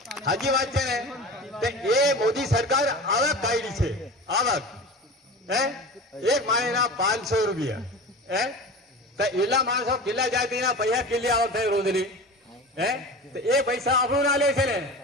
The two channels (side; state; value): both; normal; correlation 0.34